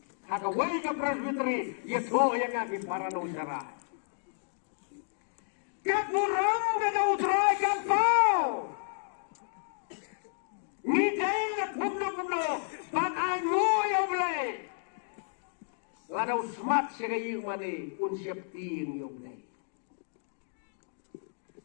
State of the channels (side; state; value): right; silent; digital silence